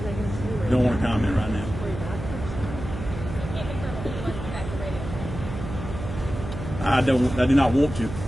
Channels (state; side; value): noise; right; hum, 8 dB below the sound